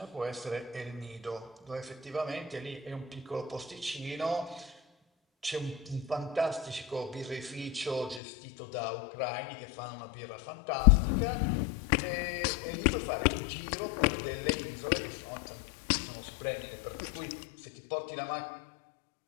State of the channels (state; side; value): drops out; right; at 8.2 s